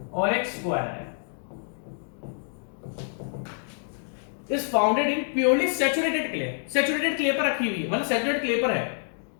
और एक स्क्वायर है, is founded in purely saturated clay, saturated clay पर रखी हुई है, मतलब सैचुरेटेड क्ले पर है।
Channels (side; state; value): right; silent; digital silence